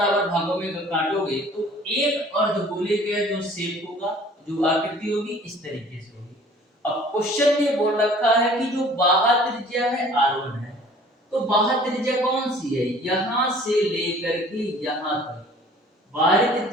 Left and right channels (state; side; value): normal; both; correlation 0.51